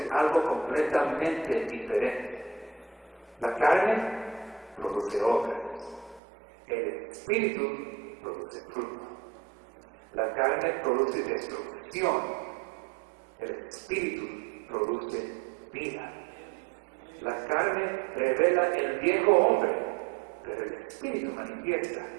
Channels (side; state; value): left; drops out; at 6.2 s